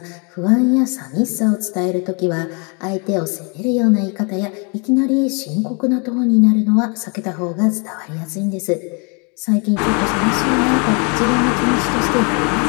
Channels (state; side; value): quieter; right; 34.4 dB